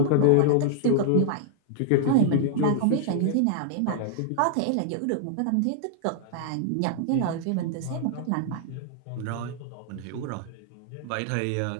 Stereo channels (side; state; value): both; different; correlation -0.01